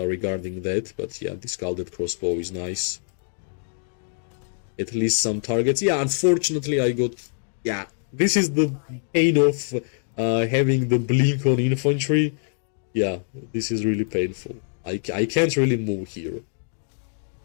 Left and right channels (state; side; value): silent; right; digital silence